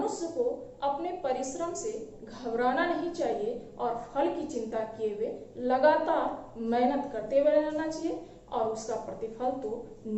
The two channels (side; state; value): both; identical; correlation 1.00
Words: को अपने परिश्रम से घबराना नहीं चाहिए और फल की चिंता किए हुए लगातार मेहनत करते हुए रहना चाहिए और उसका प्रतिफल तो